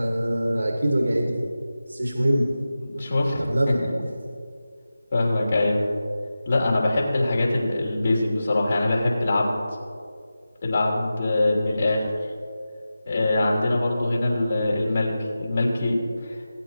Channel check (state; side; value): inverted; both; correlation -0.94